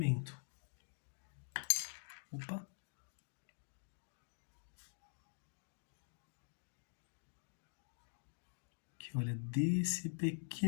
Opa! Aqui, olha, desse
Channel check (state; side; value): silent; right; digital silence